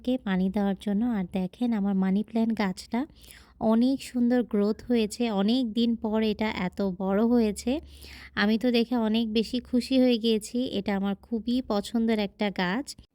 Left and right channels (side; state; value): both; identical; correlation 1.00